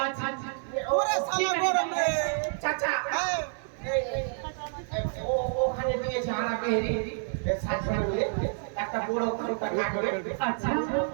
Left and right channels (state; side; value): silent; left; 59 dB below the other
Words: আচ্ছা আচ্ছা ওরে সালা গরম রে চাচা ওখানে দিয়েছে হারা বেহরি সাজনে একটা বড় খাতা কাটবে আচ্ছা